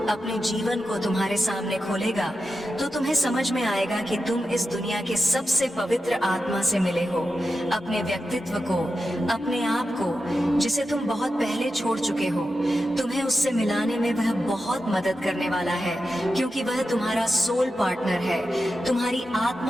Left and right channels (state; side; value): normal; both; correlation 0.90